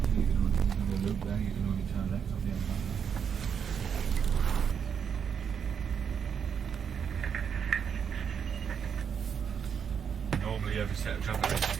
can only loop there, you can only turn left on the other side. Normally every set of traffic has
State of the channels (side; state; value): left; quieter; 7.3 dB